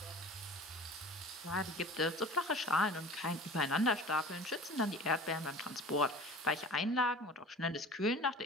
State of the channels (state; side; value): normal; both; correlation 0.40